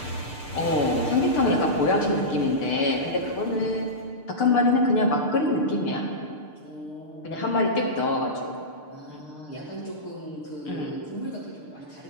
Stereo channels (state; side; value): late; right; 6.7 ms